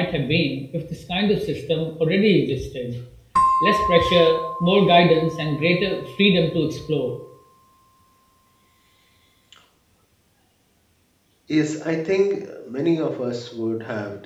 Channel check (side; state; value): both; identical; correlation 1.00